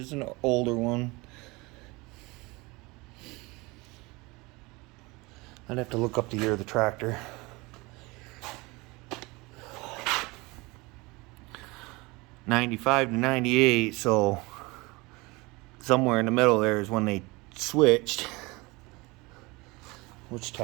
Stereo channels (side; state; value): left; quieter; 24.3 dB